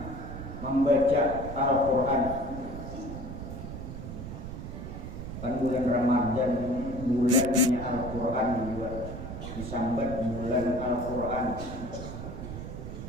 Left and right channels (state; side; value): noise; right; rumble, 8 dB below the sound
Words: membaca Al-Qur'an. Kan bulan Ramadan ini bulannya Al-Qur'an juga disambat bulan Al-Qur'an.